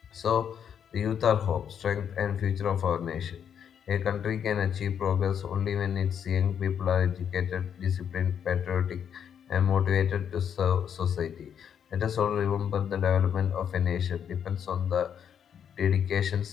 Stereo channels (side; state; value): right; quieter; 8.3 dB